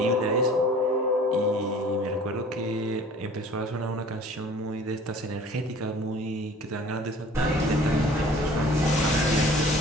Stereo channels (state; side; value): normal; both; correlation 0.48